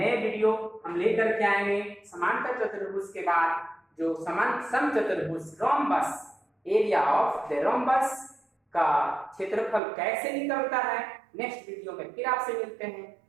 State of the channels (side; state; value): left; drops out; at 9.8 s